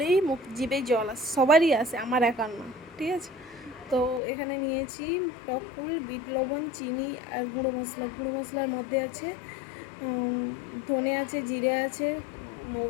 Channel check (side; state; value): right; drops out; at 4.2 s